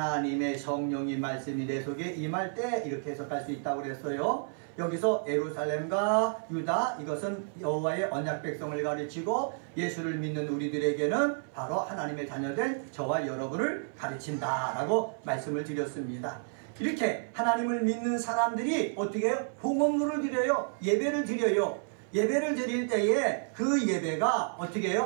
성령이 말씀이 내 속에 임할 때, 이렇게 해석할 수 있다고 그랬어요. 여기서 예루살렘과 유다, 이것은 여호와의 언약 백성을 가르치고 예수를 믿는 우리들에게는 바로 하나님의 자녀된 저와 여러분을 가르친다라고 말씀을 드렸습니다. 이렇게 하나님을 믿는 사람들이 어떻게 해요? 봉헌물을 드려요. 예배를 드려요. 예배를 드릴 때에 그 예배가 어떻게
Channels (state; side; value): silent; left; 57 dB below the other